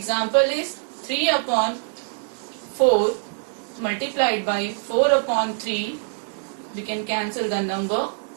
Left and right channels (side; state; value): left; silent; digital silence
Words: 3 upon 4 multiplied by 4 upon 3. We can cancel the number